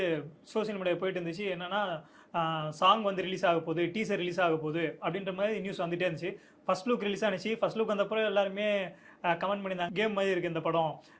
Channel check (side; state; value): both; identical; correlation 1.00